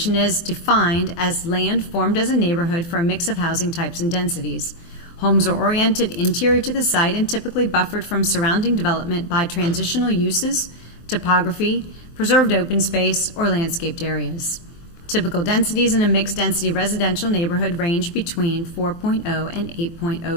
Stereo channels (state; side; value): late; right; 24 ms